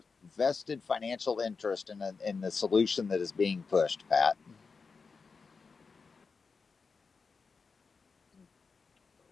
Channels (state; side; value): quieter; right; 4.9 dB